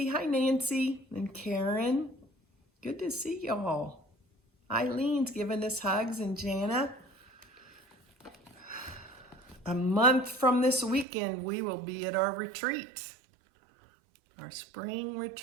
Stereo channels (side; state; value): left; drops out; at 11.1 s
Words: Hi, Nancy. And Karen. Good to see y'all. Eileen's giving us hugs, and Jana. A month from this weekend, we will be at our retreat, our spring